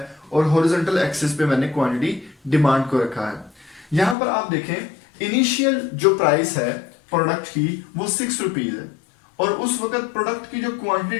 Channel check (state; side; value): drops out; right; at 4.2 s